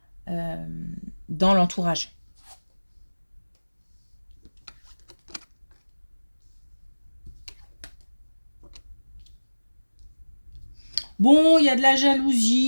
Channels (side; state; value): both; inverted; correlation -1.00